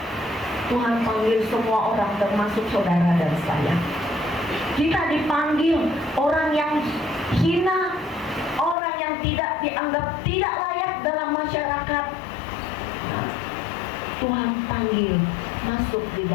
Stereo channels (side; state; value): right; drops out; at 8.8 s